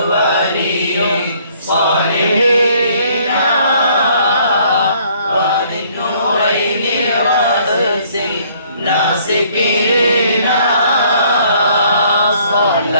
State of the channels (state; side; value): inverted; both; correlation -0.61